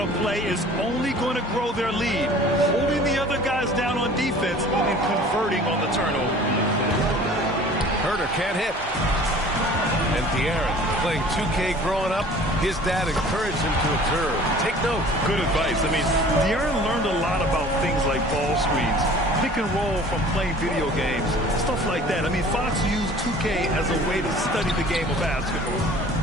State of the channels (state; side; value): normal; both; correlation 0.47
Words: play is only going to grow their lead, holding the other guys down on defense and converting on the turnover. Herter can't hit. And De'Aaron, playing 2K growing up, his dad encouraged him to observe. Take note. Good advice. I mean, De'Aaron learned a lot about things like ball screens, pick and roll from playing video games, stuff like that. I mean, Fox used 2K as a way to study the game of basketball.